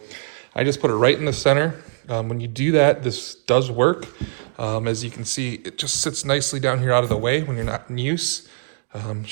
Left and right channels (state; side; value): silent; left; 64 dB below the other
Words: I just put it right in the center. When you do that, this does work. As you can see, it just sits nicely down here out of the way when you're not in use.